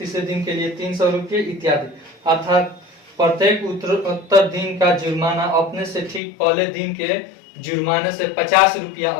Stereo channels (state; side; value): drops out; right; at 6.2 s